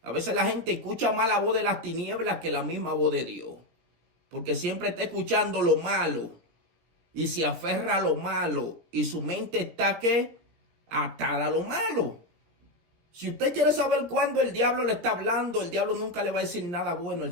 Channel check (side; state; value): left; late; 17 ms